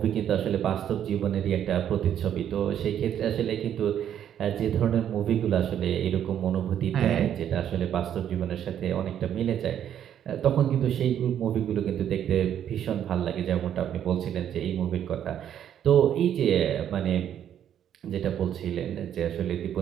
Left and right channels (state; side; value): quieter; left; 9.9 dB